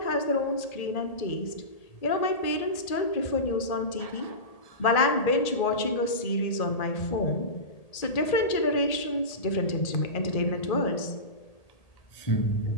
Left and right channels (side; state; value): right; late; 1.8 ms